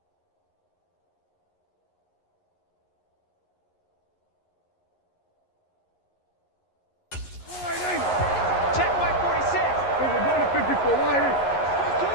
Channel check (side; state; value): right; late; 11 ms